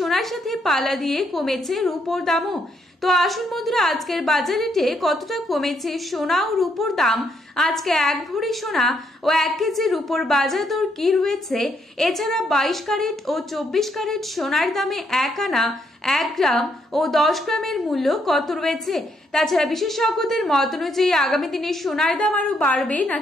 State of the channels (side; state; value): both; normal; correlation 0.74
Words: সাথে পাল্লা দিয়ে কমেছে রূপোর দামও। তো আসুন বন্ধুরা, আজকের বাজার রেটে কতটা কমেছে সোনা ও রূপোর দাম, আজকে 1 ভরি সোনা ও 1 কেজি রূপোর বাজার দর কি রয়েছে, এছাড়া 22 ক্যারেট ও 24 ক্যারেট সোনার দামে 1 আনা, 1 গ্রাম ও 10 গ্রামের মূল্য কত রয়েছে। তাছাড়া বিশেষজ্ঞদের মত অনুযায়ী আগামী দিনে সোনার দাম আরো বাড়বে